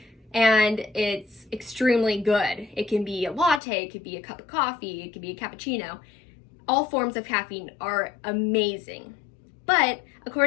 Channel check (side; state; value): right; drops out; at 3.6 s